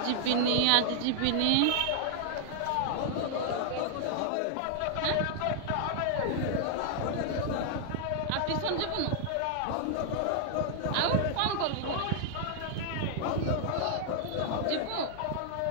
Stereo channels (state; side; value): different; both; correlation 0.00